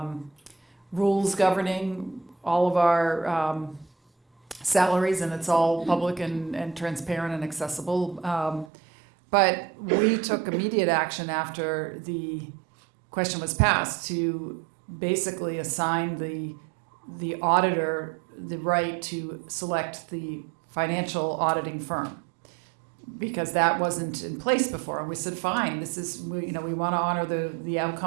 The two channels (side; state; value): left; drops out; at 8.7 s